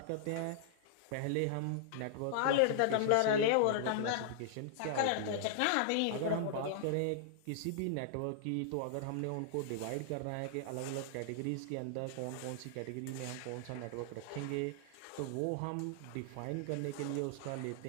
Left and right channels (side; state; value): both; different; correlation -0.01